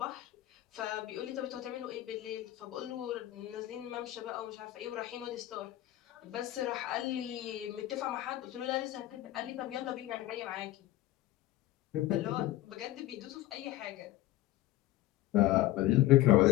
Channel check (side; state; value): right; quieter; 15.3 dB